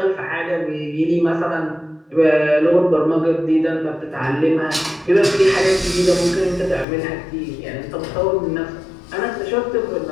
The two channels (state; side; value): drops out; right; at 6.9 s